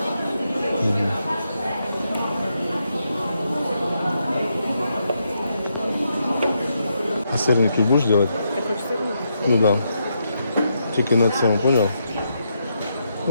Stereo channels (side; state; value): both; inverted; correlation -0.81